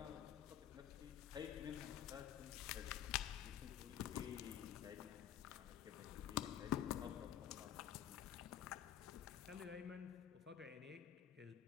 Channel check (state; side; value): quieter; right; 10.6 dB